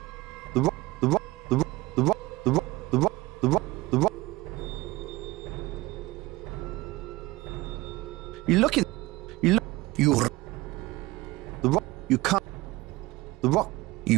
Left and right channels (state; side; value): quieter; left; 20.1 dB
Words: The rock. The rock. The rock. The rock. The rock. The rock. The rock. The rock. You look in. You look. You. The rock. You can't. The rock.